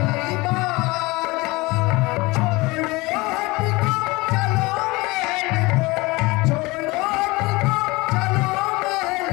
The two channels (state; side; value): quieter; right; 23.1 dB